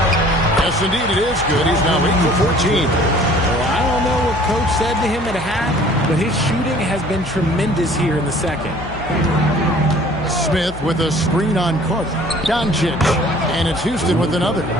Yes, indeed, it is good. He's now 8 for 14. Well, I don't know what Coach said to him at half, but his shooting has been tremendous here in the second. Smith with a screen on Carter. Doncic, and it's Houston with another.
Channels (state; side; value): noise; left; hum, 14 dB below the sound